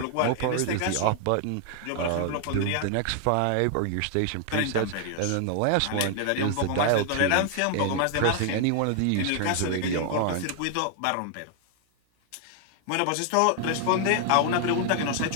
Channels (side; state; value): both; different; correlation 0.00